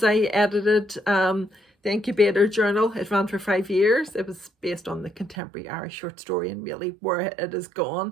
I edited the Incubator journal. It ran for 5 years. It was based on the contemporary Irish short story and really where it has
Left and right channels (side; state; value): left; drops out; at 5.4 s